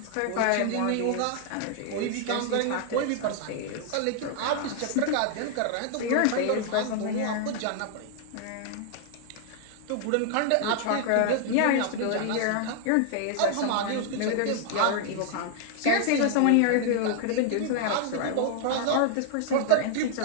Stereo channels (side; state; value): both; different; correlation 0.00